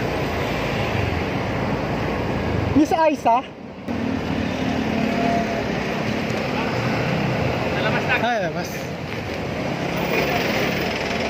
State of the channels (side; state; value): both; identical; correlation 1.00